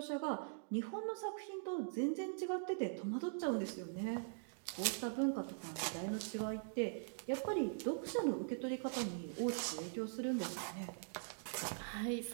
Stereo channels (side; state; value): left; silent; digital silence